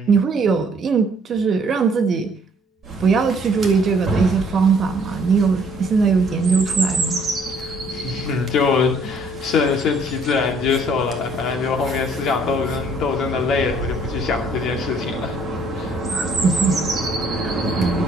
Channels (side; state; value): both; normal; correlation 0.61